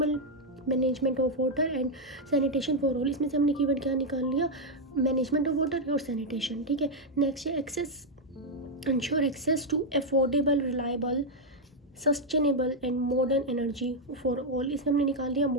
management of water and sanitation for all. इसमें से हमने कीवर्ड क्या निकाल लिया, मैनेजमेंट ऑफ वाटर और सैनिटेशन. ठीक है, नेक्स्ट है ensure access to affordable, reliable, sustainable and modern energy for all. इसमें हमने निकाल लिया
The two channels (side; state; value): both; normal; correlation 0.00